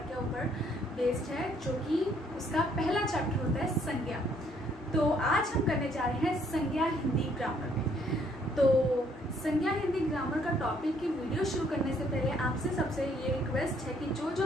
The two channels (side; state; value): both; normal; correlation 0.66